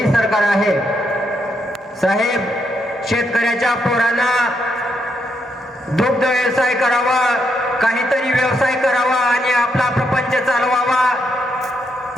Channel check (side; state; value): both; normal; correlation 0.79